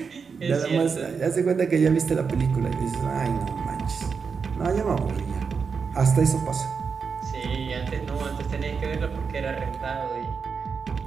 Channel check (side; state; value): left; quieter; 5.6 dB